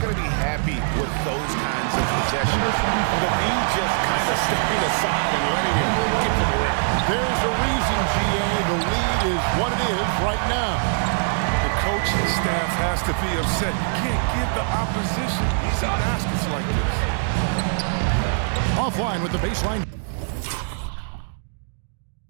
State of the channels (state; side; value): silent; left; digital silence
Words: to be happy with those kinds of possessions. The D just kind of stepping aside and letting him get to the rim. There's a reason, GA. The lead is what it is right now. The coaching staff has to be upset. You can't give the opposition easy baskets like this. Offline with the baseline.